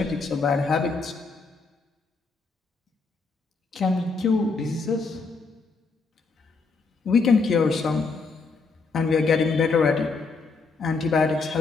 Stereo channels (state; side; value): quieter; right; 4.3 dB